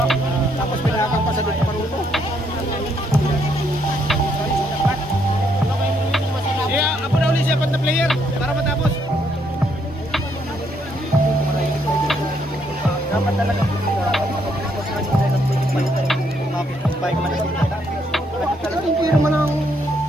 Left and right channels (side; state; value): both; normal; correlation 0.73